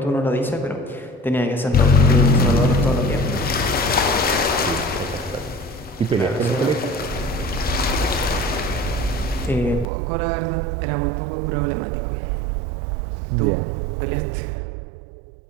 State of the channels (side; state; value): left; drops out; at 9.9 s